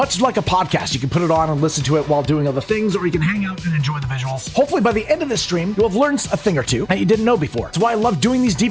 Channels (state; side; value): noise; left; hum, 27 dB below the sound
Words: like a podcast, you can put it on and listen to it while doing other things, or you can hang out and enjoy the visuals. Hopefully by the end of this stream, you'll have learned a thing or two that you didn't know before. That's why I love doing these